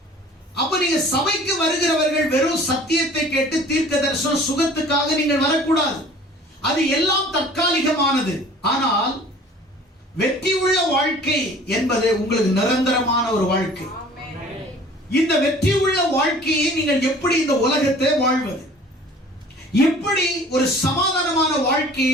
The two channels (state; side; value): normal; both; correlation 0.48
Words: அப்ப நீங்க சபைக்கு வருகிறவர்கள் வெறும் சத்தியத்தை கேட்டு தீர்க்க தரிசனம் சுகத்துக்காக நீங்கள் வரக்கூடாது. அது எல்லாம் தற்காலிகமானது. ஆனால் வெற்றி உள்ள வாழ்க்கை என்பது உங்களுக்கு நிரந்தரமான ஒரு வாழ்க்கை. இந்த வெற்றி உள்ள வாழ்க்கையை நீங்கள் எப்படி இந்த உலகத்தை வாழ்வது, எப்படி ஒரு சமாதானமான